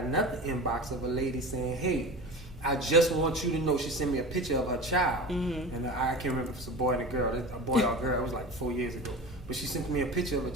another inbox of a lady saying, hey, I just want you to know, she sent me a picture of her child. And I can't remember if it's a boy and a girl, a boy or a girl. It was like 4 years ago. but she sent me a picture of a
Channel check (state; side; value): normal; both; correlation 0.32